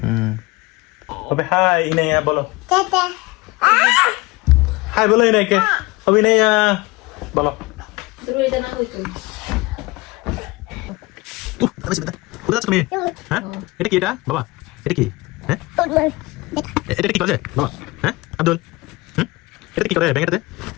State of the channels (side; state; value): right; quieter; 22.5 dB